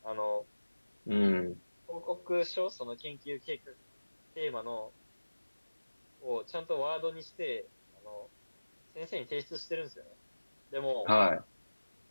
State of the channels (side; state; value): both; inverted; correlation -1.00